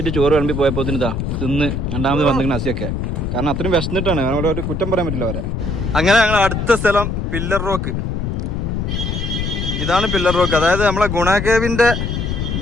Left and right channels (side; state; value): left; noise; rumble, 2 dB below the sound